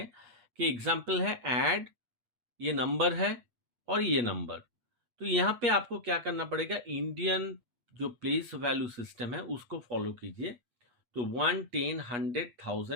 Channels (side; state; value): left; late; 8.3 ms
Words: कि एग्जाम्पल है ऐड, ये नंबर है और ये नंबर। तो यहाँ पे आपको क्या करना पड़ेगा? इंडियन जो प्लेस वैल्यू सिस्टम है उसको फॉलो कीजिए। तो 1, 10, 100,